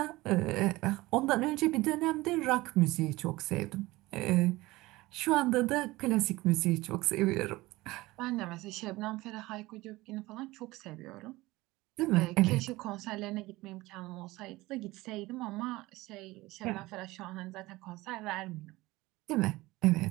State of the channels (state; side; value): quieter; left; 19.8 dB